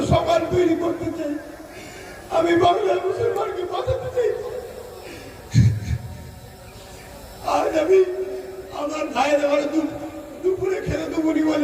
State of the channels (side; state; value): both; identical; correlation 1.00